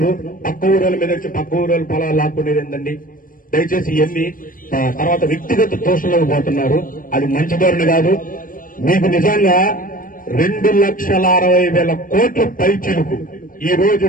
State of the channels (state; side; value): late; right; 0.40 ms